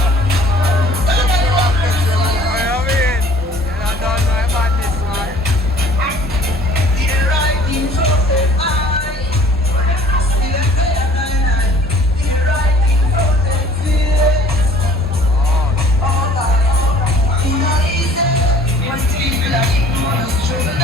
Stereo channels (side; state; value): both; normal; correlation 0.52